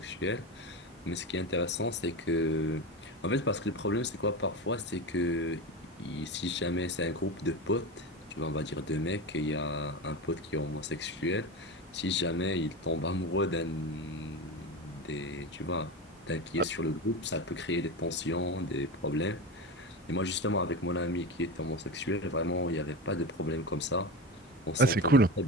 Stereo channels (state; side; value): normal; both; correlation 0.23